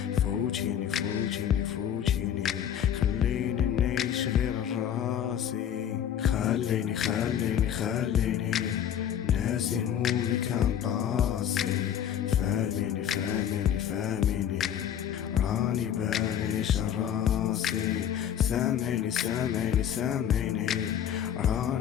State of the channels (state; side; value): quieter; right; 9.6 dB